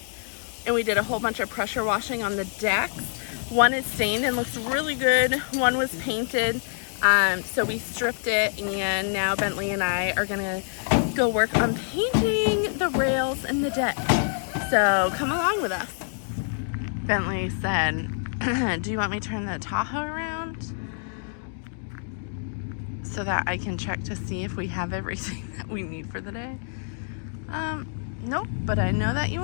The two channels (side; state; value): right; silent; digital silence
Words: and we did a whole bunch of pressure washing on the decks. One is stained and looks really good. One was painted. So we stripped it, and now Bentley and I are gonna go work on painting the rails and the deck. So come along with us. Bentley said, do you want me to turn the Tahoe around so that I can check to see if we have everything that we need for the day? Nope, but I know that you